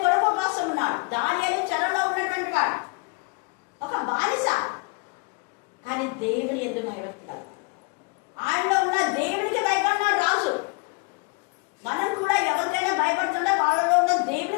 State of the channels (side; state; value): right; quieter; 30.2 dB